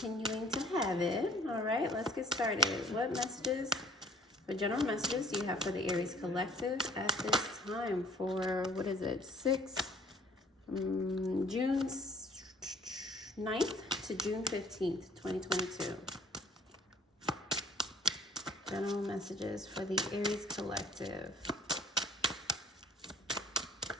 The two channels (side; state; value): both; normal; correlation 0.55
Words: to have it. All right, let's get started. What messages, what general messages do you have for the Aries collective at this time for, what is it, June 9th to June 15th, 2022. General messages for the Aries collective.